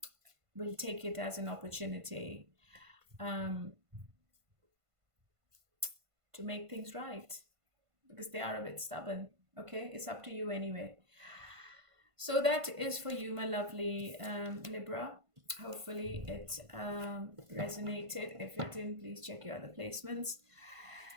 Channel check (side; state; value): left; late; 1.5 ms